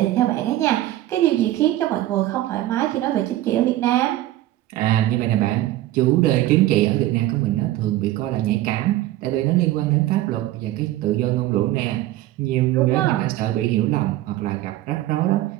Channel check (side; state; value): left; quieter; 15.1 dB